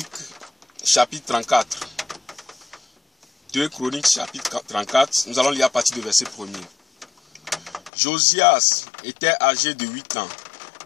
chapitre 34. 2 Chroniques, chapitre 34. Nous allons lire à partir du verset 1er. Josias était âgé de 8 ans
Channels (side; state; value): right; drops out; at 7.9 s